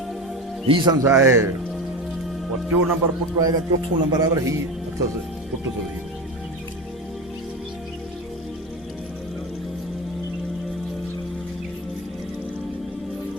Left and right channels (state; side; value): normal; both; correlation 0.25